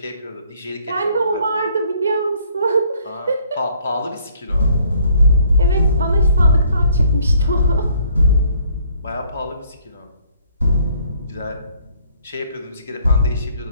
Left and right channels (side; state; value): both; inverted; correlation -0.62